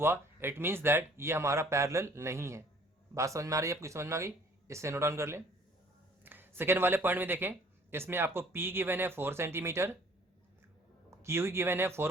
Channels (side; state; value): both; normal; correlation 0.56